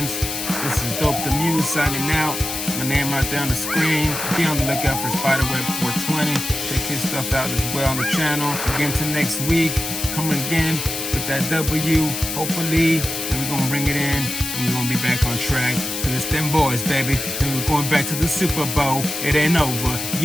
This is Dope the Muse signing out. My name right there on the screen. Be on the lookout for Spiderweb 420. Check his stuff out as well on the channel. Again to next week. Coming again with that W, hopefully. And we're going to bring it in. And we're going to be back on track. Because it's them boys, baby. And we're going back to the Super Bowl. It ain't over.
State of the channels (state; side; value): noise; left; hiss, 4 dB below the sound